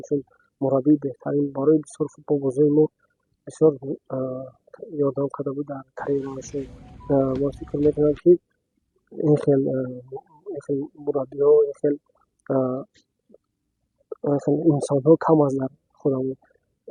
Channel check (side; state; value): both; identical; correlation 1.00